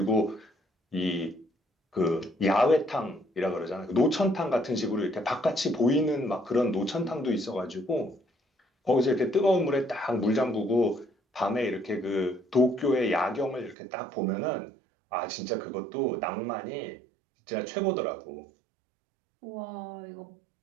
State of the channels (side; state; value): left; drops out; at 13.8 s